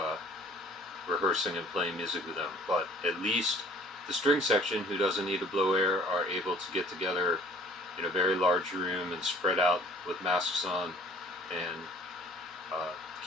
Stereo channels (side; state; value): both; normal; correlation 0.53